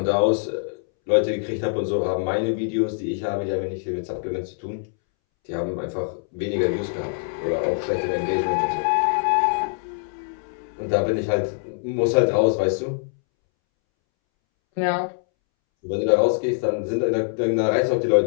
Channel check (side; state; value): right; silent; 63 dB below the other